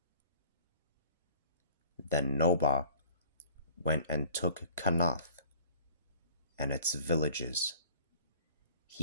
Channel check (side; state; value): both; inverted; correlation -0.49